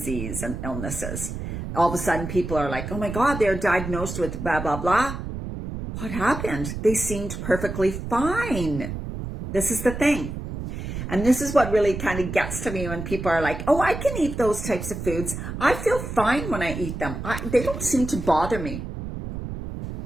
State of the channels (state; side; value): noise; right; rumble, 7 dB below the sound